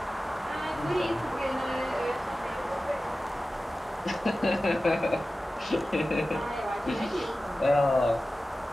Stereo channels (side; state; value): both; normal; correlation 0.95